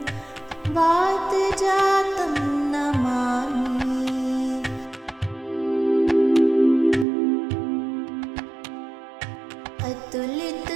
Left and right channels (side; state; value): left; drops out; at 7.1 s